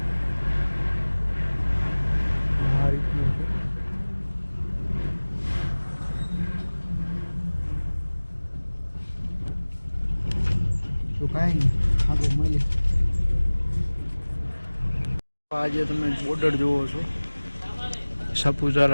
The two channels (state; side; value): inverted; both; correlation -1.00